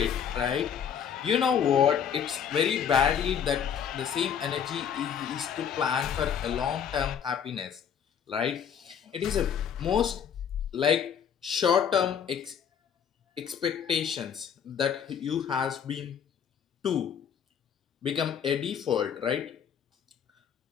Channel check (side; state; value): right; quieter; 8.0 dB